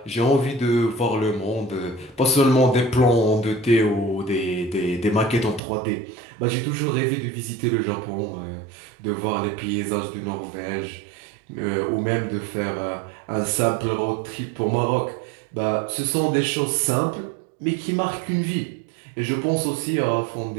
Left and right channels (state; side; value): drops out; left; at 5.6 s